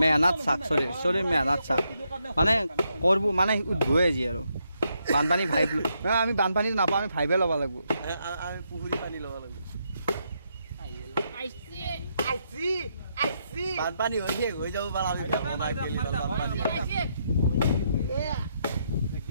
মেহনাত চাক চলিৰ মেহনাত চাক মানে কৰিব মানে উদ্ভৱে আজি আৰু বানপানী ভাইব আমি বানপানীটো নাপাওঁ আমি ভাইবে ল'ব লাগিব আমি পুখুৰী পানী ল'ব লাগিব বানপানী হৈ শেষ হৈ যাব পাৰা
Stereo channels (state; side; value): inverted; both; correlation -0.78